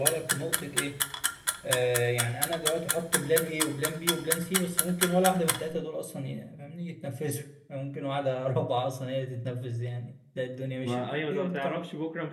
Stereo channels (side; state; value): both; identical; correlation 1.00